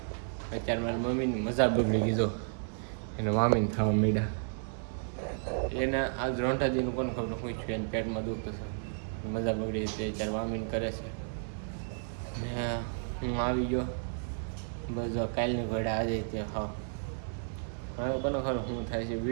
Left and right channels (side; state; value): left; silent; digital silence